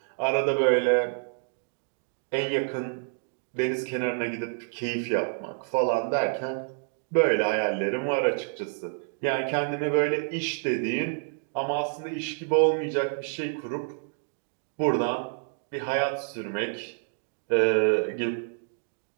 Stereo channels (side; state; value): left; silent; digital silence